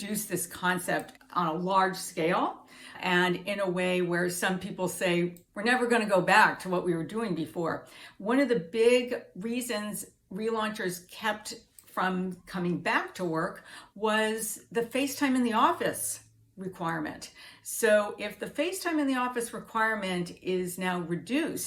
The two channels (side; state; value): both; identical; correlation 1.00